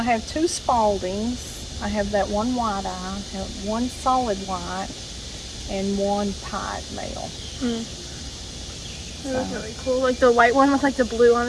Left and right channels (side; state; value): both; identical; correlation 1.00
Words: have 2 Spaldings. I have that one white eye, I have 1 solid white, and 1 pied male. That was really cool. Like the white one with like the blue on